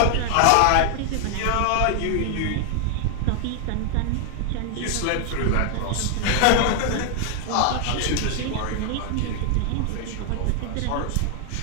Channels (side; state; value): both; different; correlation 0.00